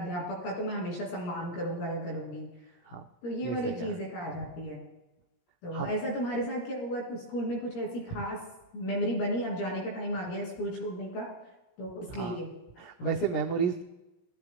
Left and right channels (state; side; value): late; right; 17 ms